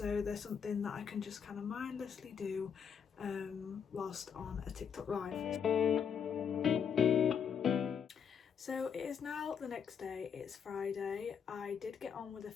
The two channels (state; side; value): quieter; right; 7.3 dB